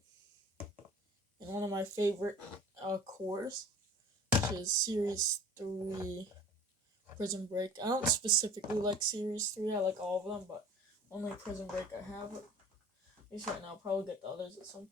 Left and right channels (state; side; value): normal; both; correlation 0.45